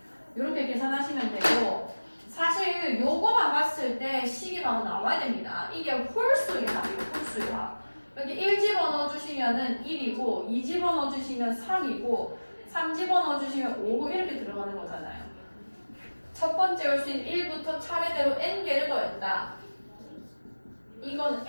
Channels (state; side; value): inverted; both; correlation -1.00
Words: 이렇게 계산하시면 되고 사실 요거만 봤을 때 식이 바로 나와야 됩니다. 이게 홀수의 합이에요. 홀수의 합. 여기 1 집어넣어 주시면은 1이고 2 집어넣어 주시면 3이고 3 집어넣어 주시면 5 이렇게 들어가는 거잖아요. 첫 번째 홀수인 1부터 차례대로 n개를 더했다. 이건